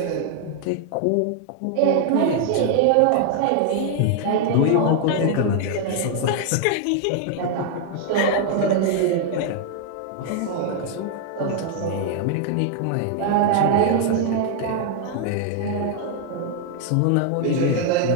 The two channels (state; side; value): different; both; correlation 0.00